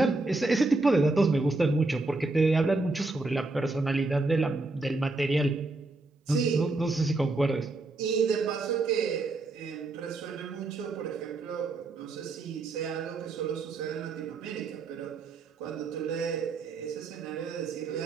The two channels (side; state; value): left; quieter; 3.2 dB